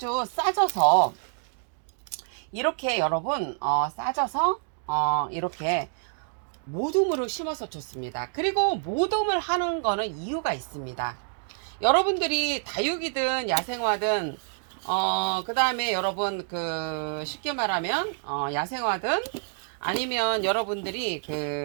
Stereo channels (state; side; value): silent; left; digital silence